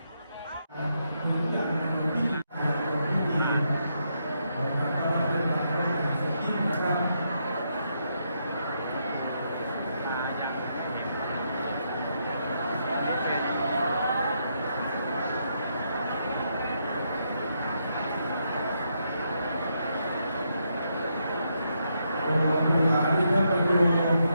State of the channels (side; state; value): both; inverted; correlation -0.79